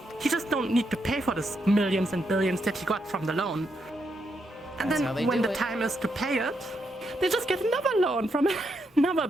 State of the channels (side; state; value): both; normal; correlation 0.80